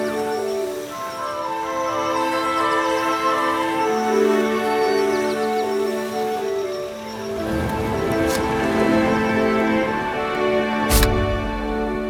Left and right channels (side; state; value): both; identical; correlation 1.00